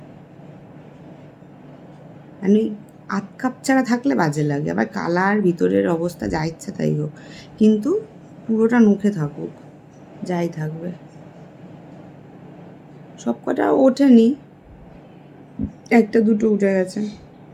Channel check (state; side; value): identical; both; correlation 1.00